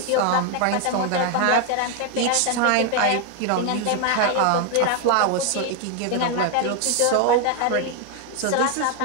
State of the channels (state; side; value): different; both; correlation 0.01